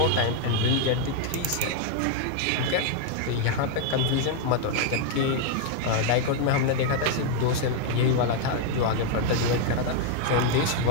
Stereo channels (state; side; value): different; both; correlation 0.00